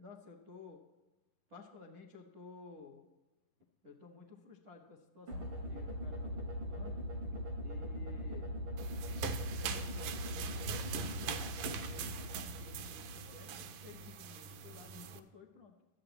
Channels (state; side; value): late; left; 11 ms